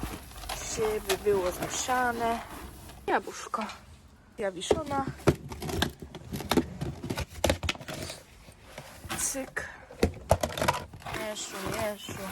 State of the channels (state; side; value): identical; both; correlation 1.00